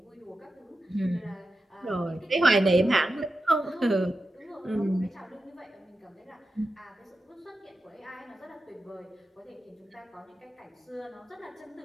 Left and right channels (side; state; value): both; normal; correlation 0.91